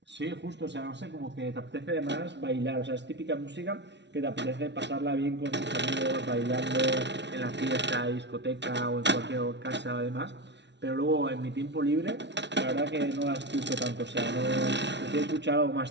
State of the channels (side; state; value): left; late; 0.51 ms